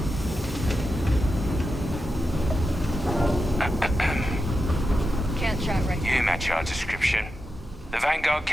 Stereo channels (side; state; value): both; normal; correlation 0.89